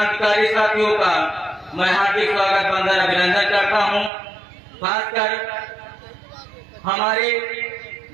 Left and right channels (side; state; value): left; drops out; at 4.1 s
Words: साथियों का मैं हार्दिक स्वागत वंदन अभिनंदन करता हूं। खासकर हमारी